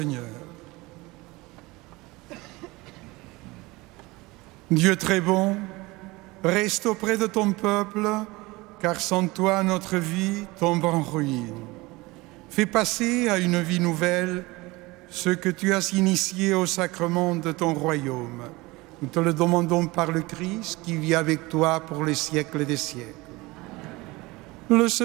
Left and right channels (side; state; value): left; quieter; 22.2 dB